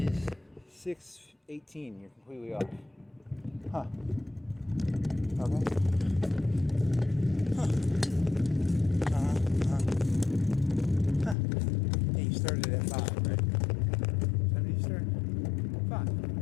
is 6:18. You're completely off. Huh. Okay. Yeah, you started at 5, right? When did you start? 5.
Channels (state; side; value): drops out; right; at 11.4 s